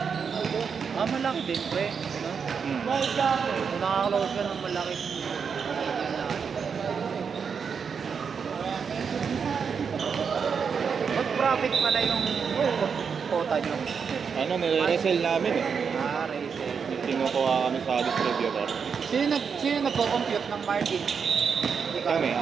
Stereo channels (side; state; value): left; quieter; 6.3 dB